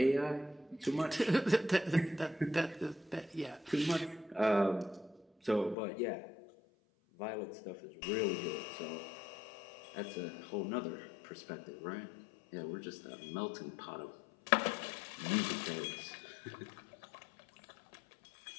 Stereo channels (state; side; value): drops out; right; at 5.8 s